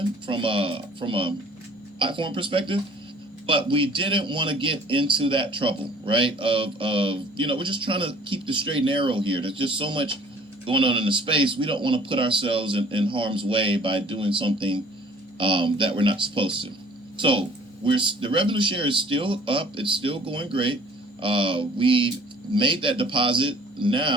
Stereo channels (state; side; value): normal; both; correlation 0.53